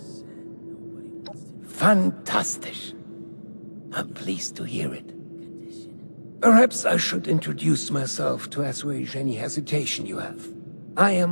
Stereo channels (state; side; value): inverted; both; correlation -1.00